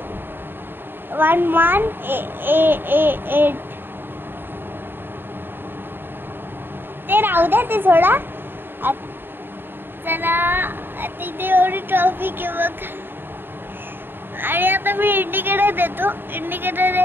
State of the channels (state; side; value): late; left; 0.099 ms